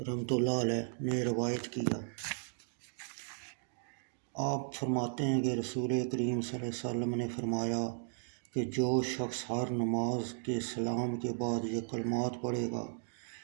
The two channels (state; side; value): silent; left; digital silence